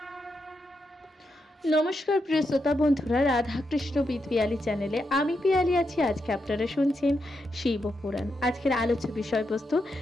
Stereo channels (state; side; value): normal; both; correlation 0.84